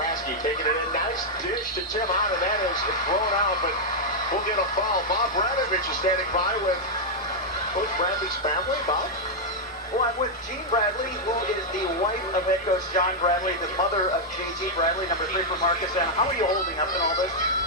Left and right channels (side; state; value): both; normal; correlation -0.03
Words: taking it in. Nice dish to Tim Hahn, and that is thrown out, but we'll get a foul. Bob Radovich is standing by with Coach Bradley's family. Bob? Well, I'm with Jean Bradley, who is the wife of head coach John Bradley, the mother of J.G. Bradley, number 3 for Markesan. How are you holding up in all this?